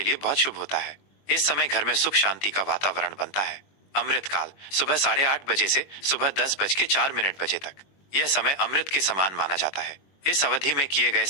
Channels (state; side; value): late; right; 21 ms